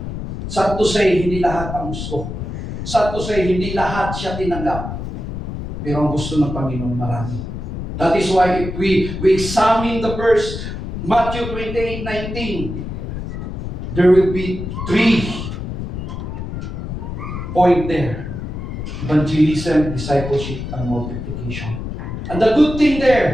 Sad to say, hindi lahat ang gusto. Sad to say, hindi lahat siya tinanggap. Pero ang gusto ng Panginoon marami. That is why if we examine the verse, Matthew 28:19, there will be 3 point there. Evangelism, discipleship, and multiplication. And the good thing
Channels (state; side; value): noise; left; rumble, 6 dB below the sound